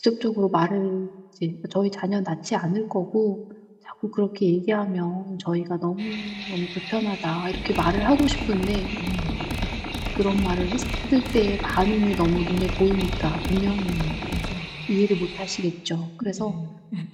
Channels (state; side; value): identical; both; correlation 1.00